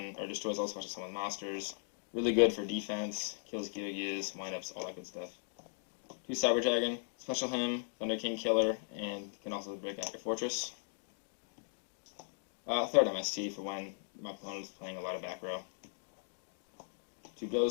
or destroys all special summon monsters. Really good for defense, kills Gears, windups, all that good stuff. 2 Cyber Dragon, special him, Thunder King killer, and can also break out your fortress. 3rd MST for when my opponent is playing a lot of back row. 2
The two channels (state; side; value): silent; right; digital silence